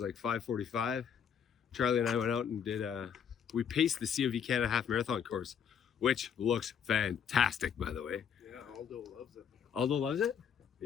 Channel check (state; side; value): quieter; right; 7.7 dB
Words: like 5:45. Charlie and I went out and did. We paced the COV Canada Half Marathon course, which looks fantastic, by the way. Yeah, Aldo loves it. Aldo loves it.